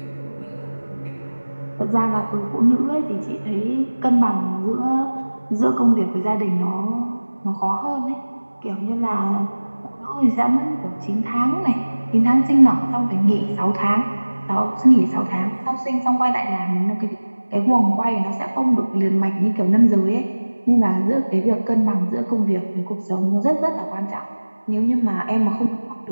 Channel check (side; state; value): both; inverted; correlation -1.00